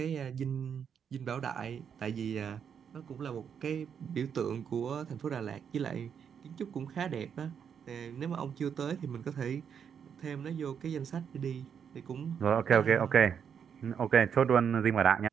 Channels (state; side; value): quieter; left; 7.6 dB